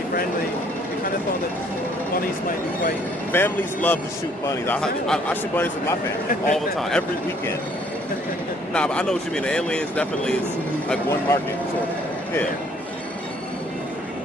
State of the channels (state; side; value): normal; both; correlation 0.62